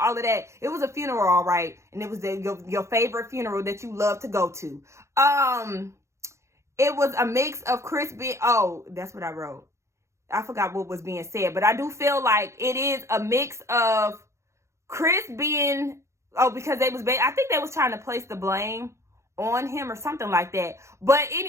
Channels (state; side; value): late; left; 0.14 ms